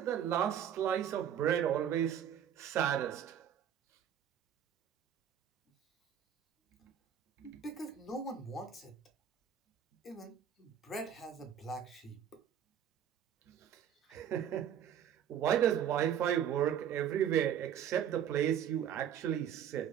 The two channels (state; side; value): quieter; left; 9.3 dB